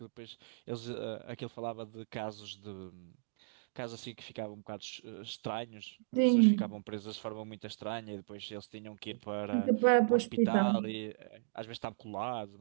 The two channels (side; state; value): left; silent; digital silence